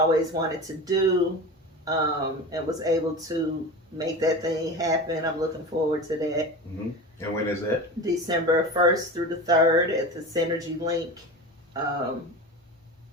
wanted to do, and was able to make that thing happen. I'm looking forward to that. Mm-hmm. And when is that? December 1st through the 3rd at the Synergy Link.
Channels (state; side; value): normal; both; correlation 0.29